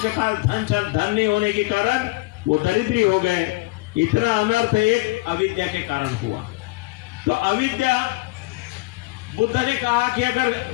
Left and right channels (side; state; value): right; quieter; 22.5 dB